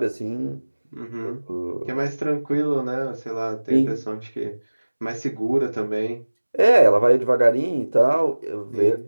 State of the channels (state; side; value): inverted; both; correlation -1.00